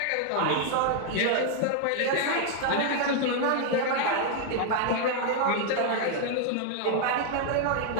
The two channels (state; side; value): different; both; correlation 0.00